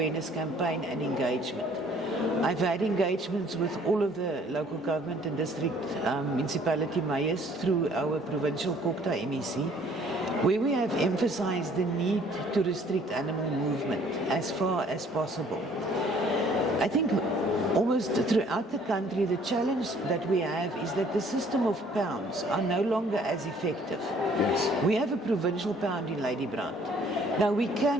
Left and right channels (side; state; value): both; normal; correlation 0.58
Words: campaign and engagement. I've had engagements with all of the local government and district municipality mayors through our provincial COGTA MEC, where we have emphasized the need to restrict animal movement as far as possible. I think almost throughout the country, the challenge that we have is that the system of pounds are no longer as effective. Yes. We have a provincial pound in Ladybrand. Now, we